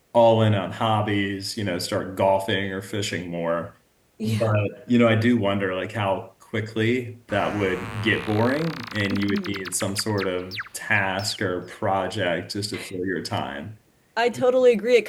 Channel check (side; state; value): both; identical; correlation 1.00